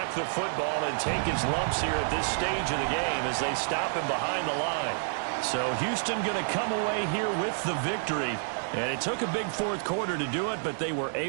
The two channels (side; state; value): left; silent; digital silence